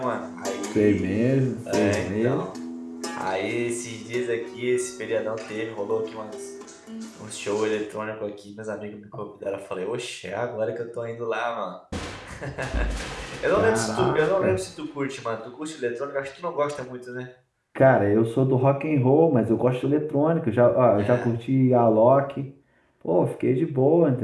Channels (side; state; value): both; identical; correlation 1.00